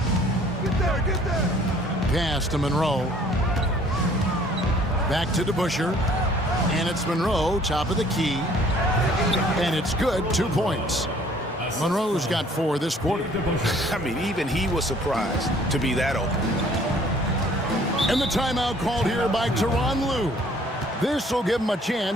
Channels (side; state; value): both; normal; correlation 0.57